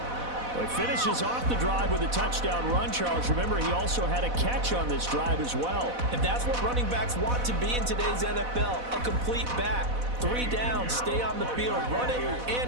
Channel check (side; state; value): left; late; 4.1 ms